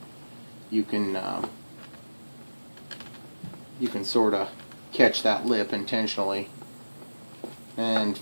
you can sort of catch that lip intentionally and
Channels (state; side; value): inverted; both; correlation -1.00